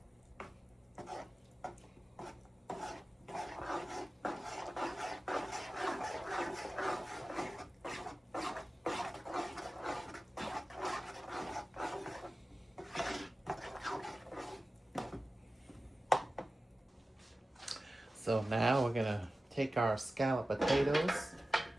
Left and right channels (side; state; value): both; normal; correlation 0.95